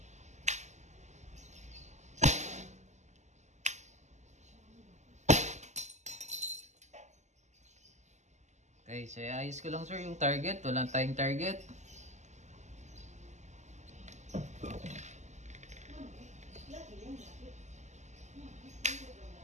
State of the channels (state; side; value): late; left; 0.34 ms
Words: Okay, so ayos ko lang, sir, yung target. Walang tayong target.